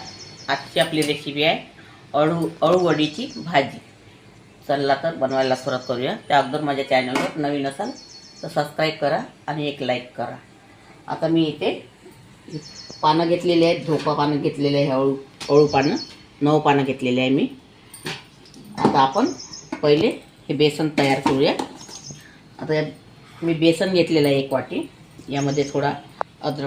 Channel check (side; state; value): both; identical; correlation 1.00